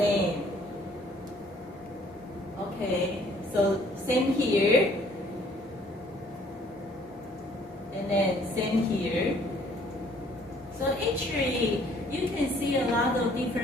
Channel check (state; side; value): normal; both; correlation 0.60